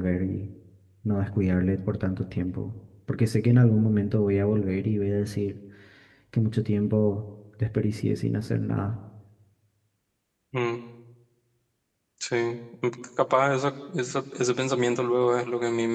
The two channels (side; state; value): both; identical; correlation 1.00